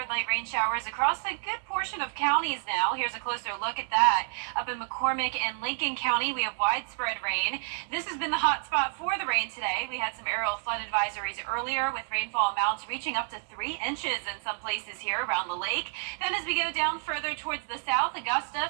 light rain showers across a good portion of counties now. Here's a closer look at that. Up in McCormick and Lincoln County, we have widespread rain. This has been the hot spot for the rain today. We had some aerial flood advisories earlier with rainfall amounts reaching up to 3 inches in some places here around the lake. Then as we go down further towards the south, Augusta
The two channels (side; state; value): left; silent; 58 dB below the other